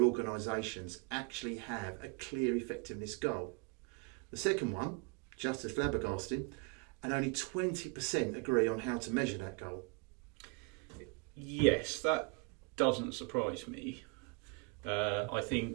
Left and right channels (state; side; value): quieter; left; 30.6 dB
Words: organisations actually have a clear effectiveness goal. The second one, just as flabbergasting, and only 20% agree on how to measure that goal. Yes, that doesn't surprise me. I